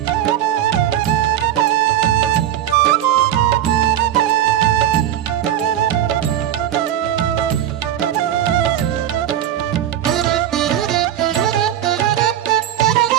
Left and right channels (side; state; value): left; quieter; 11.4 dB